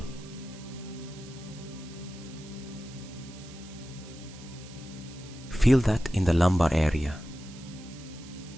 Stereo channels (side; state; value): right; noise; hiss, 19 dB below the sound